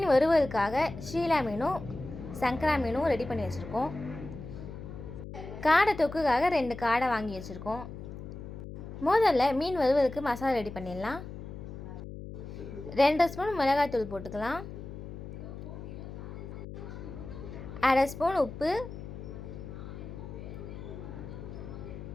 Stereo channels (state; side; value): noise; left; hum, 10 dB below the sound